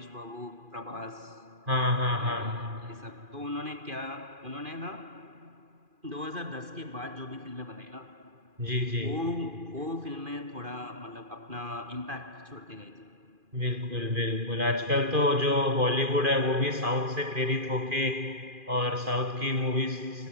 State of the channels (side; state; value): left; late; 2.4 ms